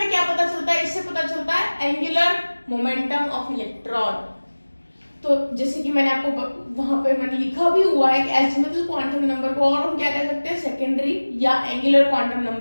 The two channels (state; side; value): inverted; both; correlation -1.00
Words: क्या पता चलता है, इससे पता चलता है एंगुलर मोमेंटम ऑफ इलेक्ट्रॉन। तो जैसे कि मैंने आपको वहां पे मैंने लिखा भी हुआ है कि एजिमुथल क्वांटम नंबर को और हम क्या कह सकते हैं, सेकेंडरी या एंगुलर क्वांटम